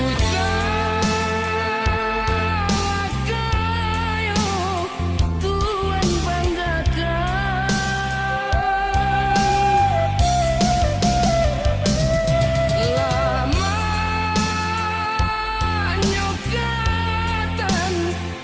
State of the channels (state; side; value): identical; both; correlation 1.00